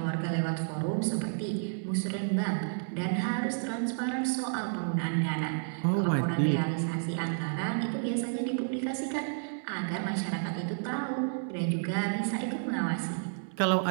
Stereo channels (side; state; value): left; silent; digital silence